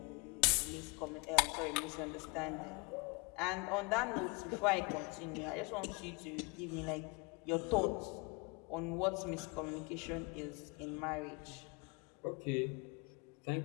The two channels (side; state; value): right; quieter; 28.1 dB